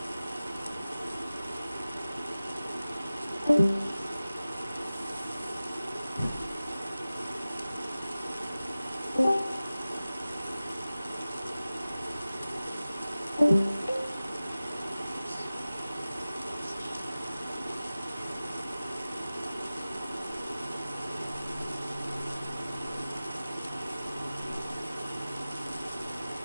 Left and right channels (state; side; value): inverted; both; correlation -0.95